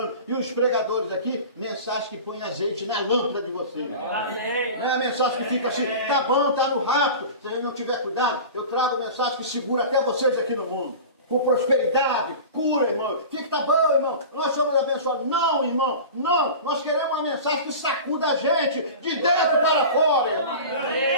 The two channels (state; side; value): inverted; both; correlation -0.35